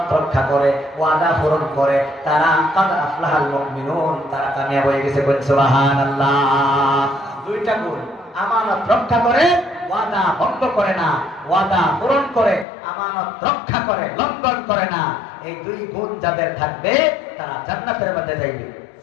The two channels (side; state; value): right; drops out; at 12.7 s